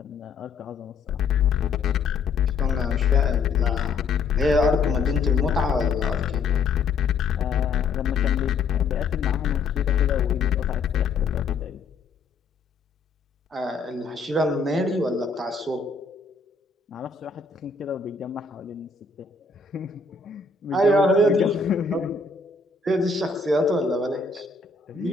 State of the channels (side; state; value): right; quieter; 4.6 dB